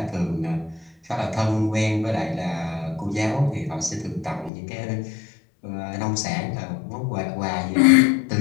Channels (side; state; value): right; drops out; at 4.5 s